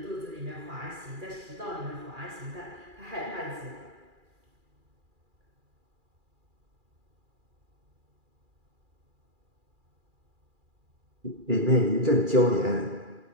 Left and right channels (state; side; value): late; left; 2.4 ms